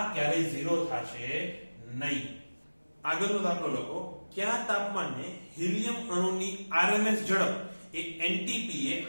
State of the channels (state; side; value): inverted; both; correlation -1.00